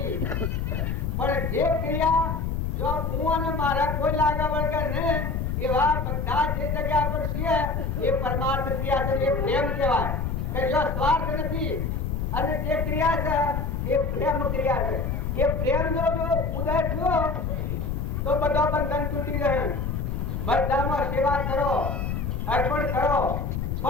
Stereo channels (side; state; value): left; noise; rumble, 1 dB below the sound